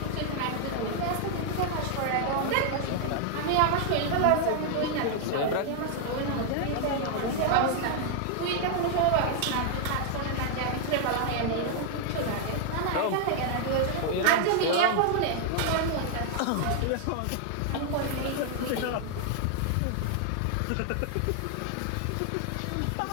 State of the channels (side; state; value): both; different; correlation 0.00